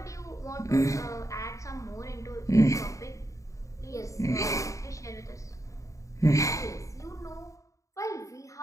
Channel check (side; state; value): right; late; 0.15 ms